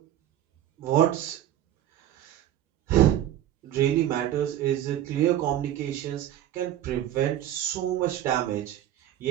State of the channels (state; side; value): quieter; left; 12.1 dB